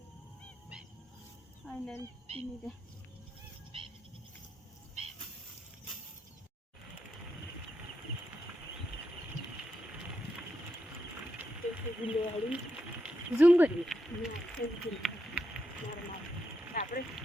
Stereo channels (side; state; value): both; normal; correlation 0.84